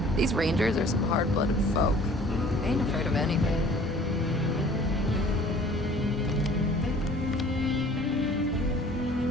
These Rangers are some hard-blooded folk. They ain't afraid of anything.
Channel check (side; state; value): both; normal; correlation 0.50